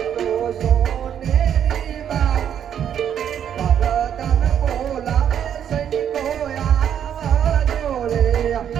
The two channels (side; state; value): left; quieter; 9.2 dB